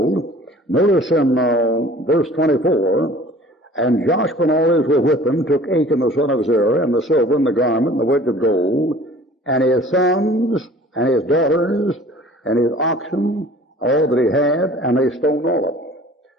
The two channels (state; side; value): normal; both; correlation 0.48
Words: notice in verse 24, and Joshua and all Israel with him took Achan the son of Zerah, and the silver, and the garment, and the wedge of gold, and his sons, and his daughters, and his oxen, all that he had, and they stoned all of them.